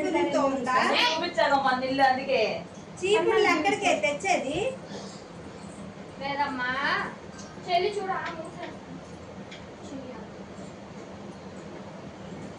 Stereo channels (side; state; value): both; identical; correlation 1.00